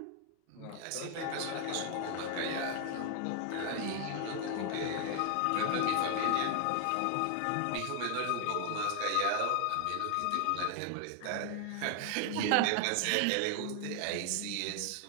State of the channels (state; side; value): different; both; correlation 0.00